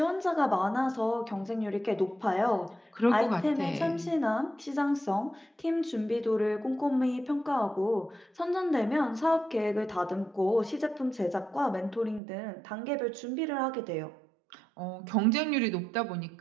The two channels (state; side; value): drops out; left; at 12.2 s